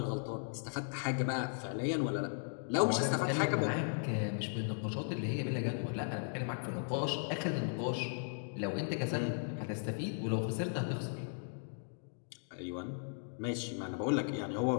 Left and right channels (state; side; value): silent; right; digital silence